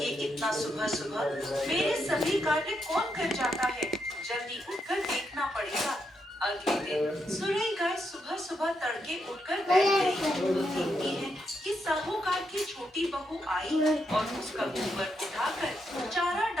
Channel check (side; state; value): both; normal; correlation 0.81